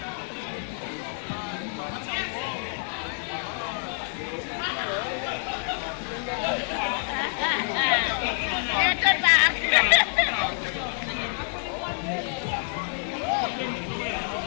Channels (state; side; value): silent; right; 60 dB below the other